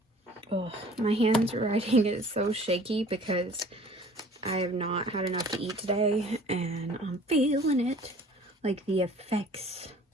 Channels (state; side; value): normal; both; correlation 0.50